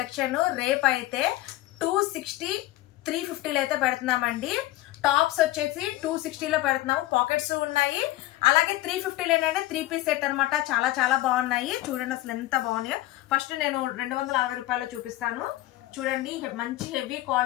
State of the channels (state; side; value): quieter; right; 16.6 dB